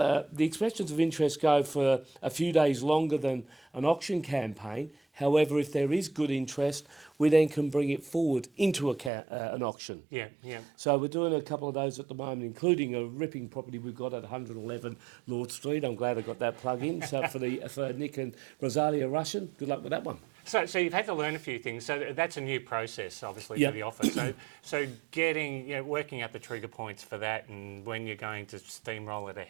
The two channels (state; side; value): drops out; left; at 9.1 s